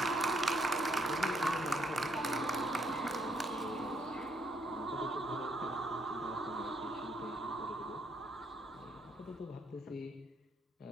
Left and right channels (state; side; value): normal; both; correlation 0.71